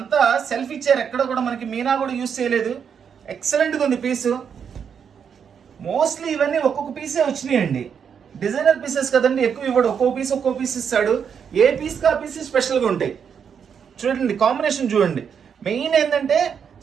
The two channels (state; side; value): quieter; left; 7.3 dB